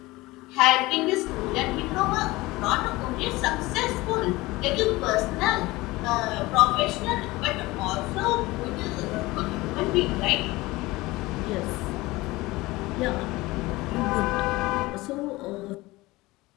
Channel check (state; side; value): quieter; right; 20.5 dB